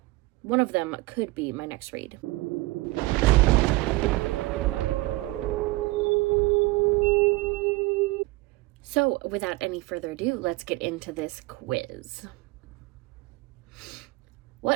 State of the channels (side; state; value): left; quieter; 21.5 dB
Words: one of them could be my next read. So, without any further ado, let's get into this quiz.